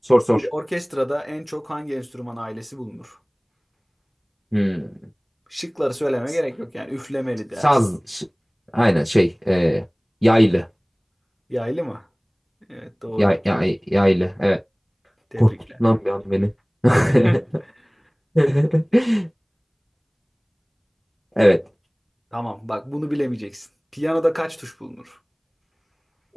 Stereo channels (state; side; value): identical; both; correlation 1.00